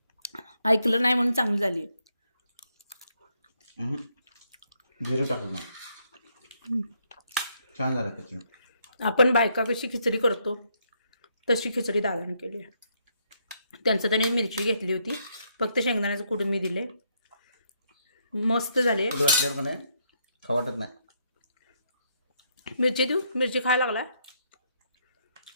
ऐकलं नाही म्हणून चांगली झाली. जिरं टाकलं नाही, छान झालं खिचडी. आपण बायका कशी खिचडी करतो तशी खिचडी दादाने केली. त्यांचं त्याने मिरची घेतली होती, फक्त शेंगदाण्याचं कूट मी दिले, मस्त झाले. कूट घातल्यावर का नाही खाऊ वाटत नाही. मिरची देऊ, मिरची खायला लागला.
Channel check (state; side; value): inverted; both; correlation -0.74